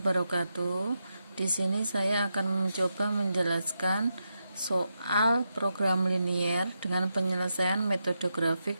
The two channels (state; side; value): inverted; both; correlation -0.85